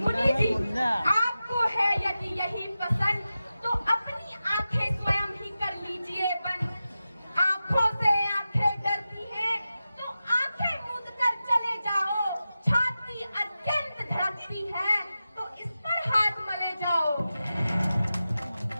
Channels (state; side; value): inverted; both; correlation -0.93